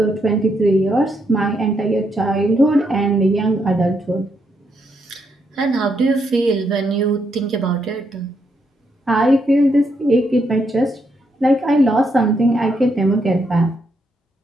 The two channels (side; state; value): both; normal; correlation 0.78